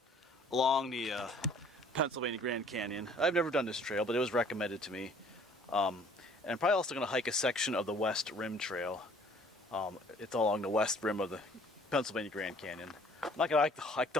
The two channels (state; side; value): normal; both; correlation 0.55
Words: along the Pennsylvania Grand Canyon. I've never done this trail, but it was recommended to me. And I'm probably also going to hike a section of the West Rim Trail. It's along the west rim of the Pennsylvania Grand Canyon. I'm not going to hike